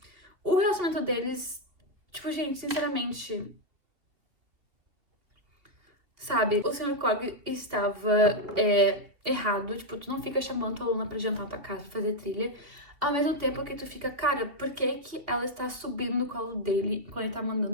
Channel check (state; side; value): late; left; 2.6 ms